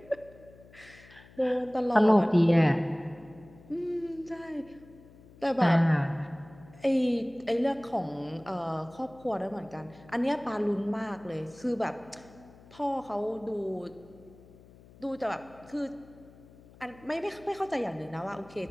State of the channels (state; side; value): noise; left; hum, 23 dB below the sound